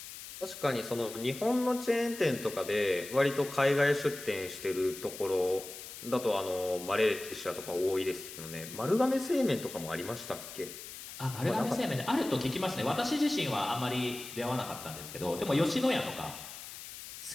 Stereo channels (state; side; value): noise; left; hiss, 12 dB below the sound